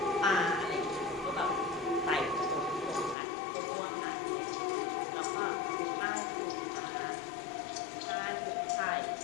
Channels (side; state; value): right; drops out; at 3.2 s